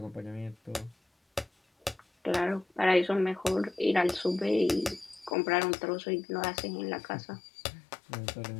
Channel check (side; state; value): right; drops out; at 5.4 s